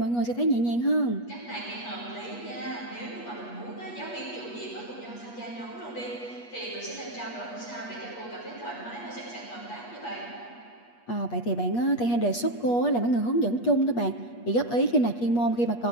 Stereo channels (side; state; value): right; late; 8.3 ms